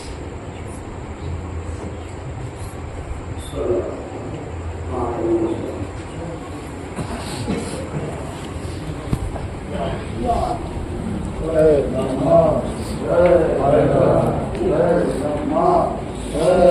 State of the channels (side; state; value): both; identical; correlation 1.00